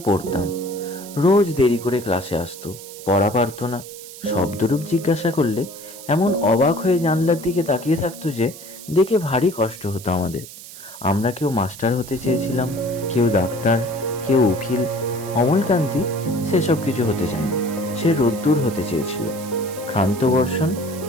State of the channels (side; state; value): right; noise; hiss, 15 dB below the sound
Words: রোজ দেরি করে ক্লাসে আসতো, পড়া পারতো না। শব্দরূপ জিজ্ঞাসা করলে এমন অবাক হয়ে জানলার দিকে তাকিয়ে থাকতো যে দেখে ভারী কষ্ট হতো আমাদের। আমরা কেউ মাস্টার হতে চেয়েছিলাম, কেউ ডাক্তার, কেউ উকিল। অমলকান্তি সেসব কিছু হতে চায়নি। সে রোদ্দুর হতে চেয়েছিল। ক্ষান্ত বর্ষণ,